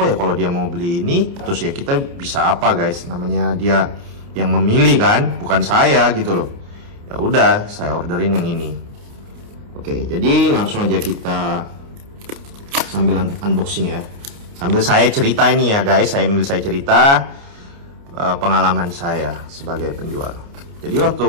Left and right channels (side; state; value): left; late; 29 ms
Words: ya kalau dia mau beli ini, terus ya kita bisa apa guys, namanya dia yang memilih kan, bukan saya gitu loh. Ya udah saya orderin yang ini. Oke, jadi langsung aja kita sambil unboxing ya. Sambil saya cerita ini ya guys, sambil saya cerita pengalaman saya sebagai penjual. Jadi waktu